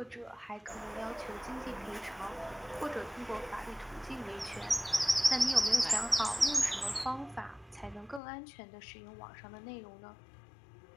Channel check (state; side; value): drops out; right; at 8.2 s